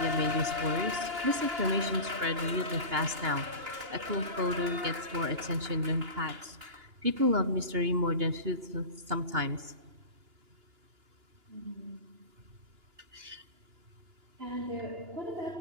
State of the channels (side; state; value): left; late; 2.9 ms